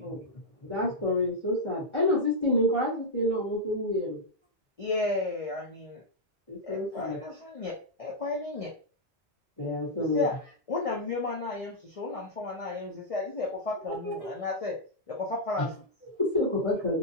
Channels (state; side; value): normal; both; correlation -0.05